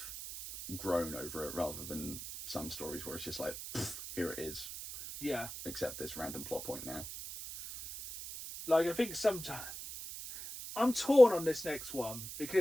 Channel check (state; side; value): noise; right; hiss, 9 dB below the sound